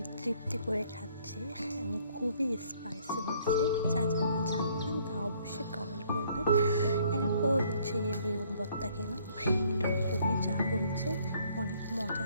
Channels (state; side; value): inverted; both; correlation -0.63